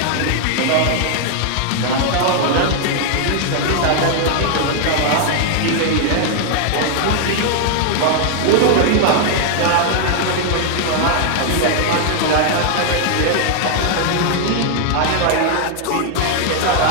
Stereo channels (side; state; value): both; different; correlation 0.00